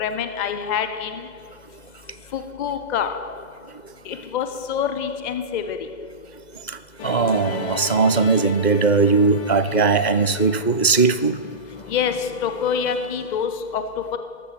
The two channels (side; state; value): right; late; 2.0 ms